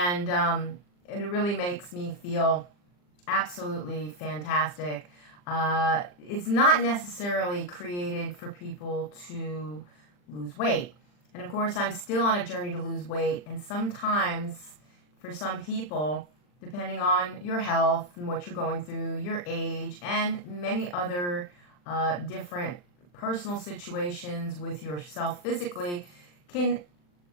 it really makes me feel absolutely fantastic. It's not necessarily created for people to lose weight. And of course, I'm still on a journey to lose weight, and sometimes for some people, depending on your health and what you're going through, your age, and many other different personal situations with yourself physically, can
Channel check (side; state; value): right; late; 40 ms